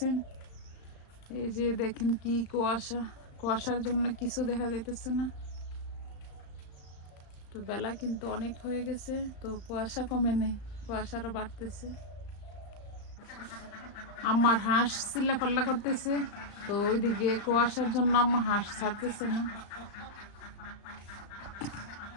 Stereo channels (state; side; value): late; right; 35 ms